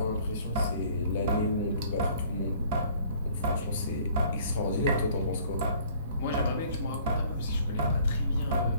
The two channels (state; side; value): inverted; both; correlation -0.56